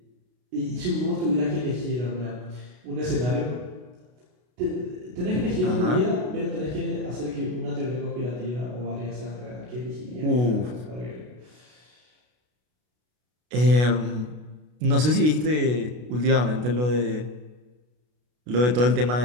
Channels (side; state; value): left; late; 33 ms